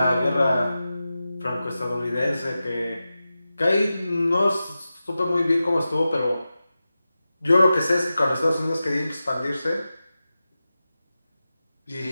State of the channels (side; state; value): both; inverted; correlation -0.93